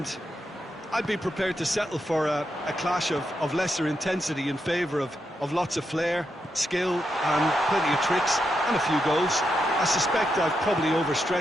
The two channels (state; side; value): normal; both; correlation 0.84